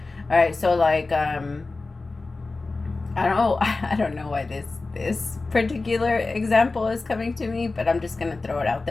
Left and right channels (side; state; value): right; quieter; 3.6 dB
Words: All right, so like I don't know why this particular example is coming to me, but I'm just gonna throw it out